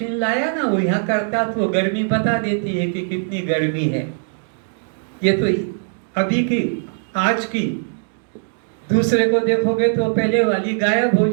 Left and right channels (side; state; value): left; silent; digital silence